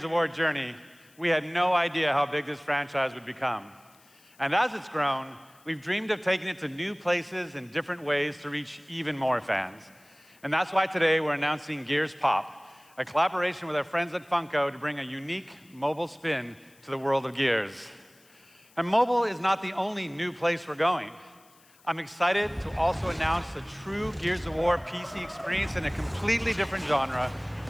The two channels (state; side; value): noise; left; hiss, 29 dB below the sound